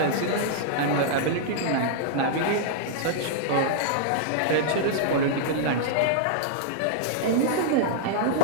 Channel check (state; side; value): different; both; correlation -0.02